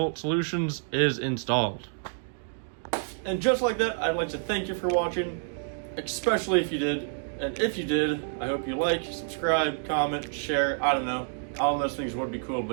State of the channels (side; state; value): left; silent; digital silence